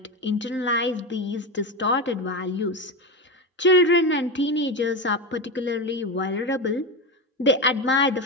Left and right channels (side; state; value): both; normal; correlation 0.17